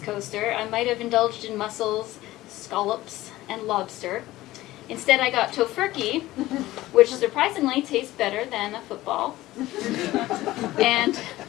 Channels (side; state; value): right; quieter; 16.8 dB